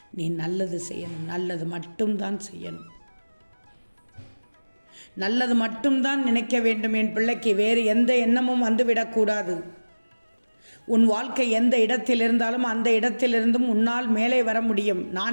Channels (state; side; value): inverted; both; correlation -1.00